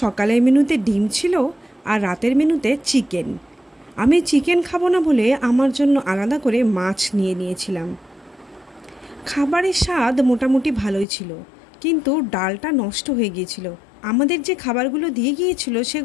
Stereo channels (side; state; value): right; drops out; at 11.1 s